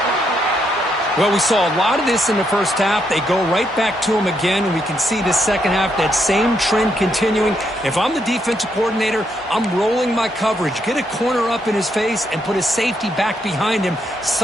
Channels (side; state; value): both; normal; correlation 0.77